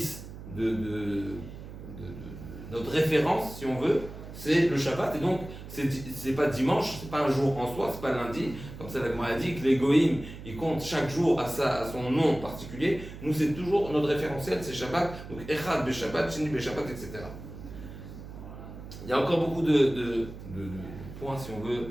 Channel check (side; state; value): right; noise; hum, 13 dB below the sound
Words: notre référence, si on veut, c'est le Shabbat. Et donc, c'est pas dimanche, c'est pas un jour en soi, c'est pas lundi. Comme ça, la Gemara a dit que les Goïm, ils comptent chaque jour à son nom particulier. Nous, c'est toujours notre référentiel, c'est Shabbat. Donc, Echad be Shabbat, Sheni be Shabbat, etc. Il y a encore beaucoup de points, si on veut,